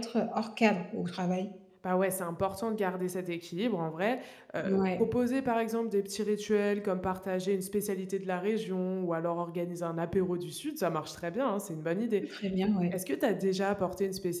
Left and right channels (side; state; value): both; identical; correlation 1.00